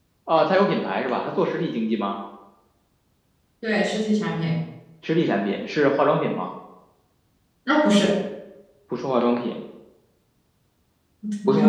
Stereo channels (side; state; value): both; identical; correlation 1.00